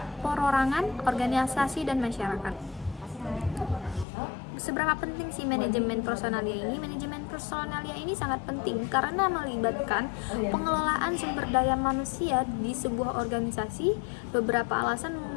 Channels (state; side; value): drops out; right; at 4.0 s